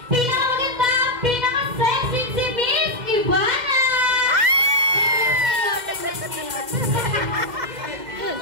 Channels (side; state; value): left; late; 2.0 ms